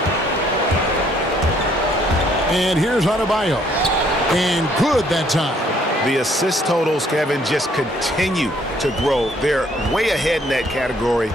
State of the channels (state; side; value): normal; both; correlation 0.65